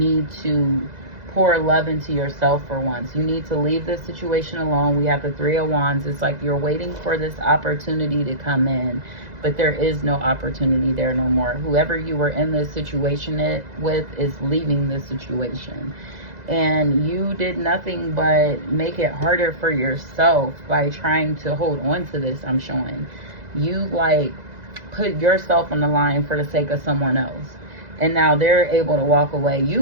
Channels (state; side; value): late; left; 2.0 ms